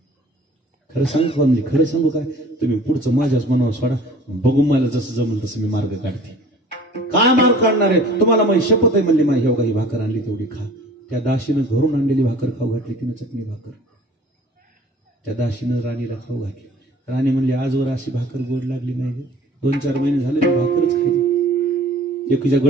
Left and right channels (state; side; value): normal; both; correlation 0.48